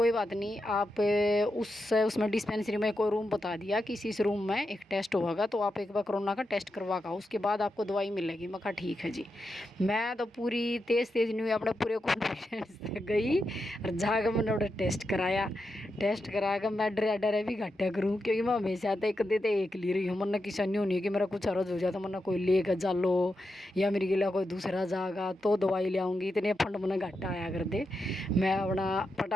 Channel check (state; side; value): normal; both; correlation 0.87